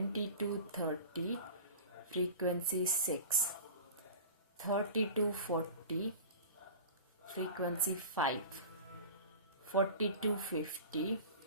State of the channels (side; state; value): both; inverted; correlation -0.37